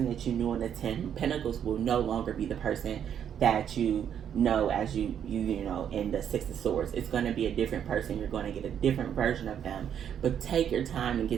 that you knew in the 10 Pentacles will no longer be the person that you know as you in the 6 of Swords. It's going to be a different person. You're going to get a different version of them. But take your time and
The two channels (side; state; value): left; quieter; 8.9 dB